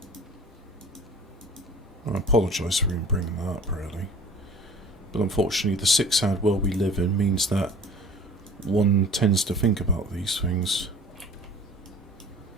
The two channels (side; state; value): both; normal; correlation 0.45